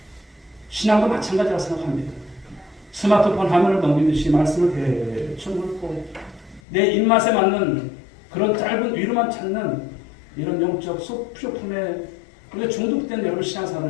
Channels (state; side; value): drops out; right; at 6.6 s